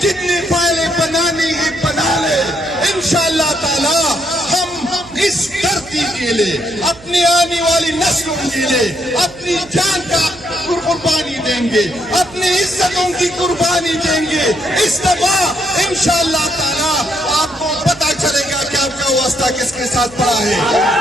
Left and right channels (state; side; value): noise; right; hum, 22 dB below the sound